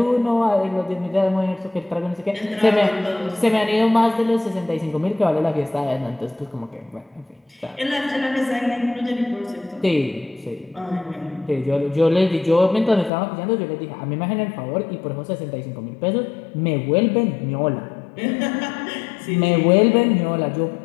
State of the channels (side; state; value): right; drops out; at 13.1 s